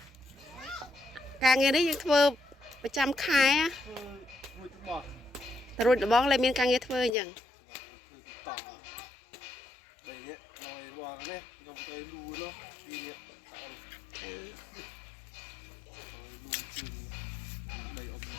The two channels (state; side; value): drops out; right; at 7.2 s